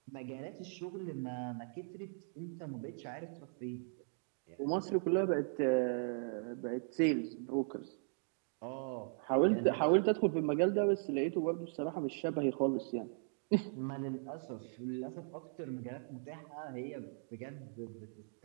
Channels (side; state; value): left; silent; digital silence